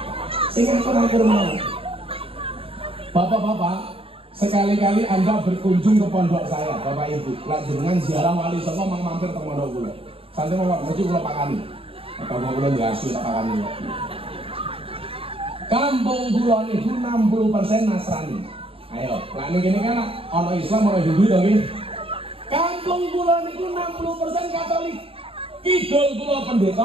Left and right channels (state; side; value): late; left; 0.27 ms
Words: Sehingga akur-akur mau. Bapak-bapak, sekali-kali Anda berkunjung ke pondok saya, Bapak Ibu. Dengan ziarah wali songo mampir ke pondok kula. Santai mau mesti kula pakani. Atau kula diasu tak pakani. Kampung kula niku 60% Nasrani. Ayo, lah ini kan ono Islam ono Hindu to nggih. Kampung kula niku 60% Katolik. Kidul kula